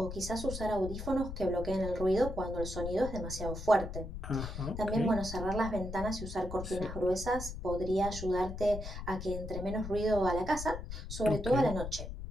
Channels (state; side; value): noise; left; rumble, 8 dB below the sound